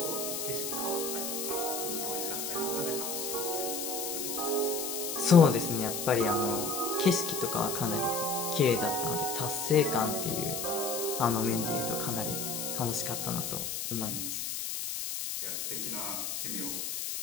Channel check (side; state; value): left; noise; hiss, 3 dB below the sound